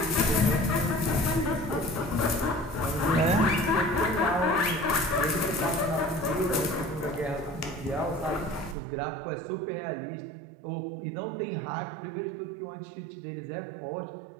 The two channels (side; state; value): left; drops out; at 8.8 s